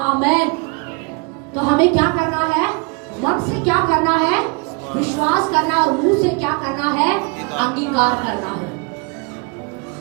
आमेन। तो हमें क्या करना है, मन से क्या करना है, विश्वास करना, और मुंह से क्या करना है, अंगीकार करना है।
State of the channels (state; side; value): quieter; left; 31.5 dB